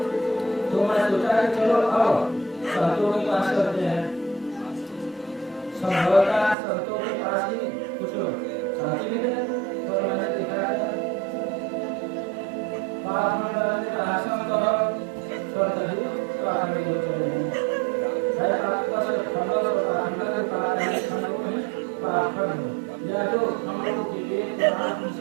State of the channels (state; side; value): drops out; left; at 6.6 s